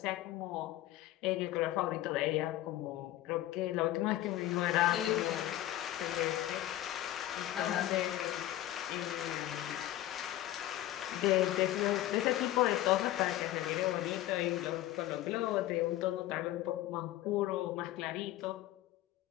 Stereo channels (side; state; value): right; quieter; 14.5 dB